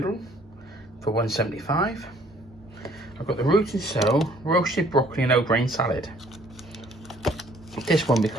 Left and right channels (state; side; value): normal; both; correlation 0.60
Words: for 175. I've got the root and soul roasted broccoli and O-grain salad. This one